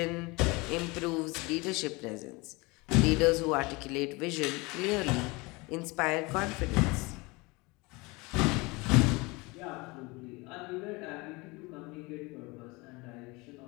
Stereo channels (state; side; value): quieter; right; 25.1 dB